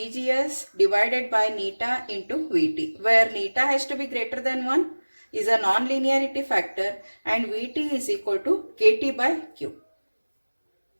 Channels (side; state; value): both; inverted; correlation -1.00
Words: divided by neta into VT, where neta has to be greater than 1 is a non-linearity factor and Vt is equal to Kt by Q.